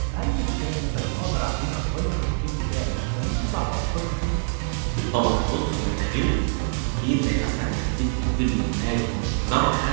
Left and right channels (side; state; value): left; silent; digital silence